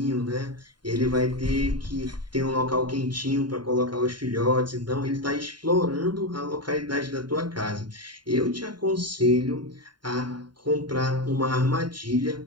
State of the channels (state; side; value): late; left; 0.71 ms